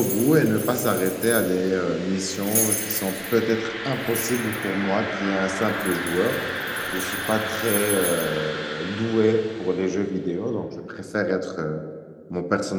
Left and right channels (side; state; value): both; identical; correlation 1.00